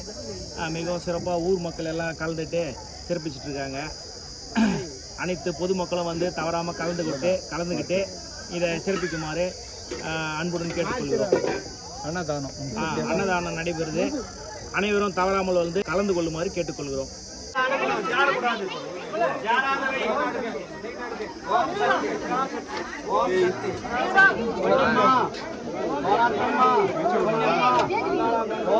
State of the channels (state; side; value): identical; both; correlation 1.00